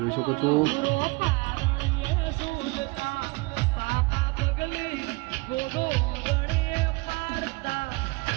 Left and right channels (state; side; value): quieter; left; 25.2 dB